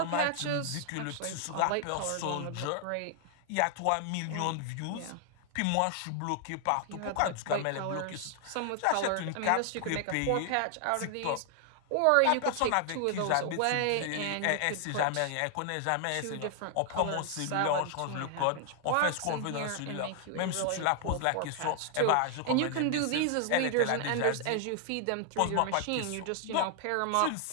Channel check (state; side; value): different; both; correlation 0.00